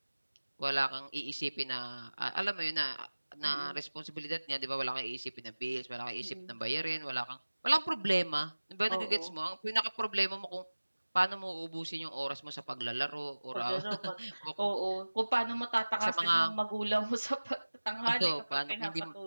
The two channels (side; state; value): both; inverted; correlation -1.00